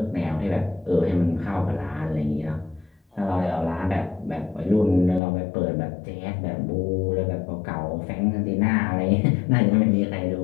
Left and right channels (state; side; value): drops out; right; at 5.2 s